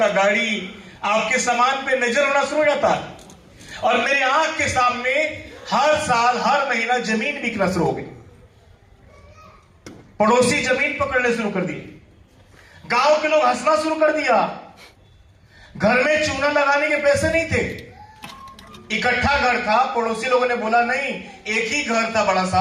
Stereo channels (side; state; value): both; identical; correlation 1.00